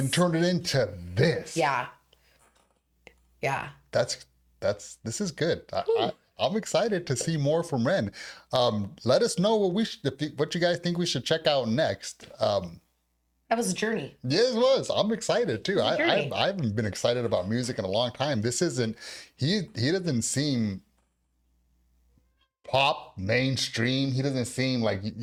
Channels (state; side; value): identical; both; correlation 1.00